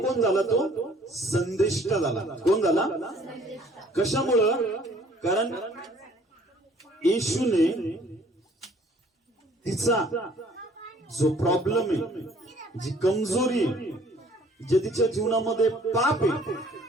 कोण झाला? तो संदेष्टा झाला. कोण झाला? कशामुळं? कारण येशूने तिचा जो प्रॉब्लेम आहे, जी कमजोरी आहे, जे तिच्या जीवनामध्ये पाप आहे,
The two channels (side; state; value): both; normal; correlation 0.56